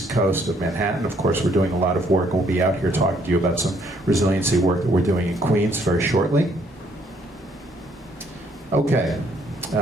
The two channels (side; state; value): both; normal; correlation 0.66